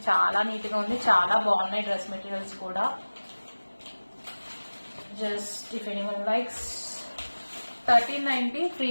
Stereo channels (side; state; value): both; inverted; correlation -1.00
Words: చాలా నీట్ గా ఉంది. చాలా బాగున్నాయి డ్రెస్ మెటీరియల్స్ కూడా. Just if anyone likes, 1390